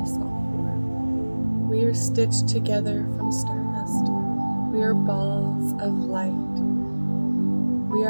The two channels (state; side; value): inverted; both; correlation -1.00